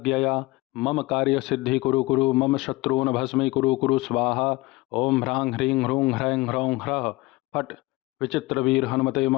मम कार्यसिद्धि कुरु कुरु मम शत्रून् भस्मी कुरु कुरु स्वाहा ओं ह्रां ह्रीं ह्रूं ह्रैं ह्रौं ह्रः फट् विचित्रवीर हनुमते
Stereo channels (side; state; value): right; quieter; 21.8 dB